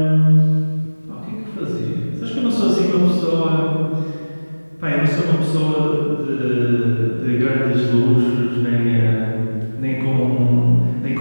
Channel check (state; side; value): inverted; both; correlation -1.00